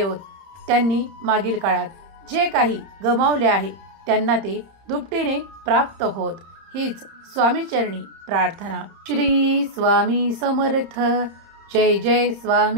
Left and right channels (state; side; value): late; left; 30 ms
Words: त्यांनी मागील काळात जे काही गमावले आहे त्यांना ते दुपटीने प्राप्त होत. हीच स्वामीचरणी प्रार्थना. श्री स्वामी समर्थ. जय जय